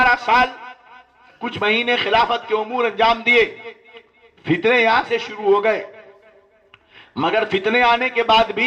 سال کچھ مہینے خلافت کے امور انجام دیے، فتنے یہاں سے شروع ہو گئے، مگر فتنے آنے کے بعد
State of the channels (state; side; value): identical; both; correlation 1.00